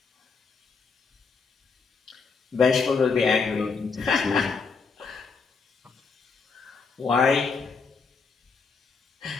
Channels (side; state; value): right; quieter; 4.9 dB